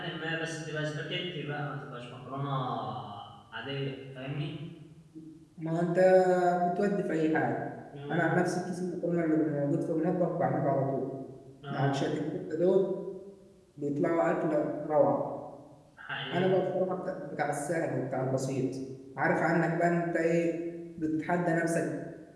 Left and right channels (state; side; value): identical; both; correlation 1.00